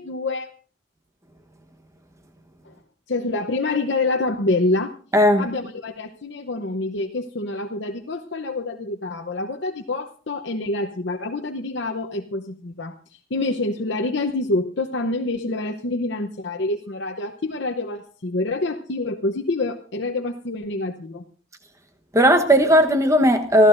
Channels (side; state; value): both; normal; correlation 0.34